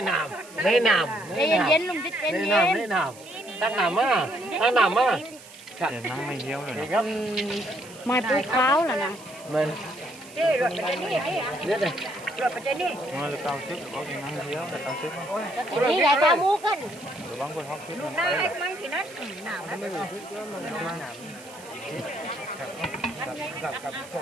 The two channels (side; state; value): right; noise; hiss, 20 dB below the sound